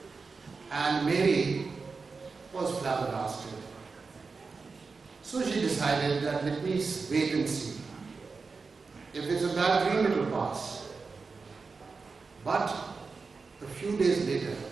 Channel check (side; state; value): left; quieter; 4.5 dB